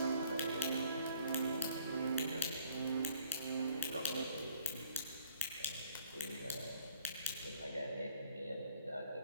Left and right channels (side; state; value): both; inverted; correlation -0.60